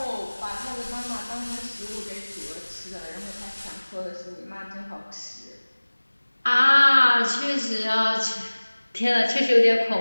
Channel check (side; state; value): both; inverted; correlation -1.00